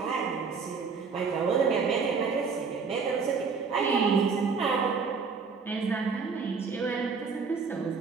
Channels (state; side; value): quieter; left; 5.2 dB